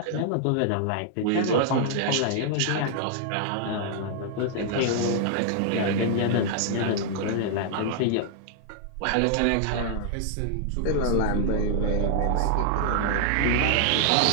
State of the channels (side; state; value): both; different; correlation -0.01